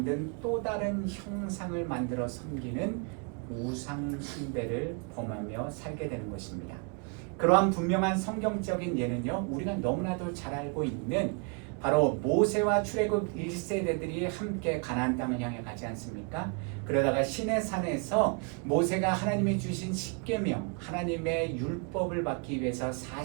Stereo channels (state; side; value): quieter; left; 36.8 dB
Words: 또 다른 형상을 만들어 섬기는 우상 숭배를 범하며 살게 되는 것입니다. 그러한 분명한 성경적인 예는요, 우리가 너무나도 잘 알고 있는 바로 모세와 출애굽 1세대들이 함께 가나안 땅을 향해 가지 않습니까? 그러다가 시내산에서 모세가 하나님이 주신 십계명, 하나님의 율법을 받기 위해서